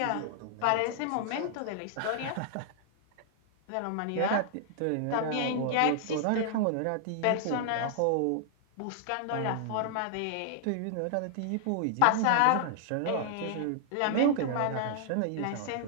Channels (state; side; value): different; both; correlation -0.01